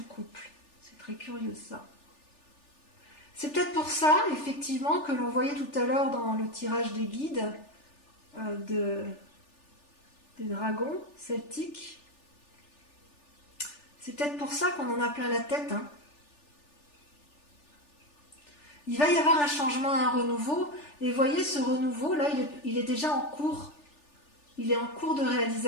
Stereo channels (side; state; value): right; late; 3.4 ms